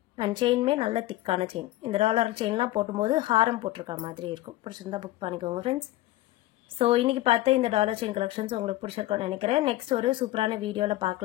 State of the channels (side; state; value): right; quieter; 16.5 dB